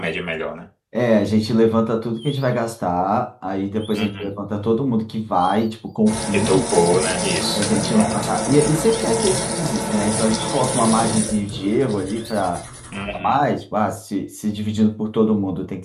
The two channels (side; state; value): both; identical; correlation 1.00